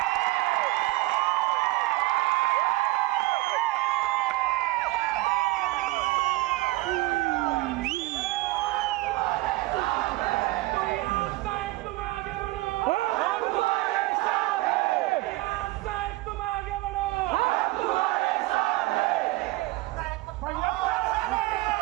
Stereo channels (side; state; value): left; quieter; 20.0 dB